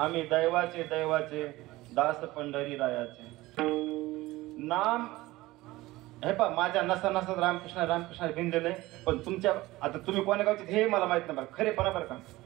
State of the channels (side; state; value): left; quieter; 18.8 dB